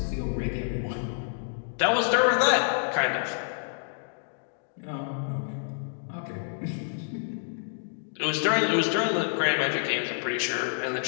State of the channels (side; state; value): right; silent; digital silence